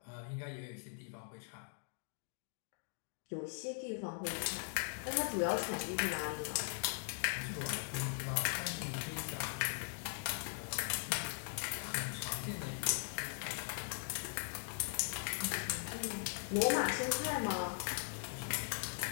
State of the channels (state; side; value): silent; right; digital silence